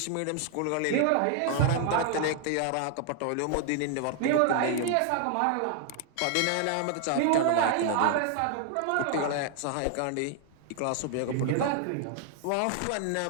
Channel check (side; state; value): both; different; correlation 0.00